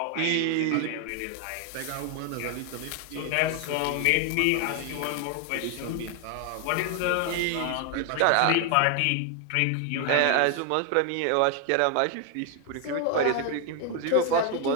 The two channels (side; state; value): both; different; correlation 0.00